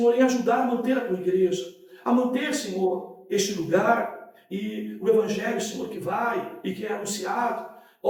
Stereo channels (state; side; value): identical; both; correlation 1.00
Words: em ajudar a manter a tua igreja, a manter, Senhor, este lugar e o Evangelho, Senhor, que vai e que é anunciado,